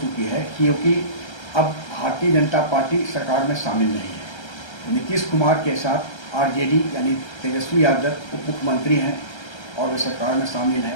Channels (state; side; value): late; right; 1.3 ms